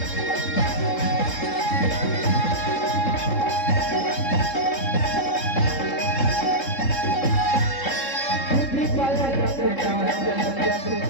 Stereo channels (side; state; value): right; late; 3.7 ms